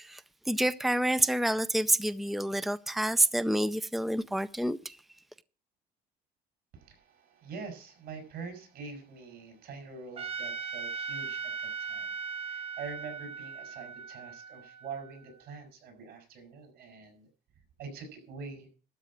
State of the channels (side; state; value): both; normal; correlation 0.79